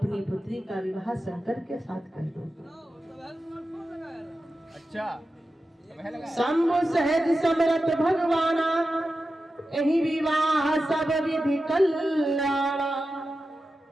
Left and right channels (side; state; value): both; normal; correlation 0.92